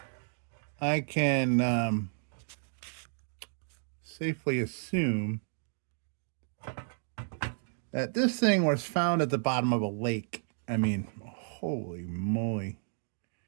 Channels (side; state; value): left; silent; digital silence